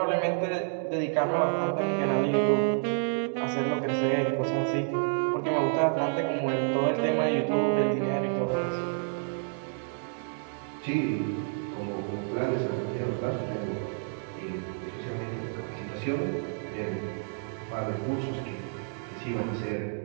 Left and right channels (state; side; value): silent; left; 58 dB below the other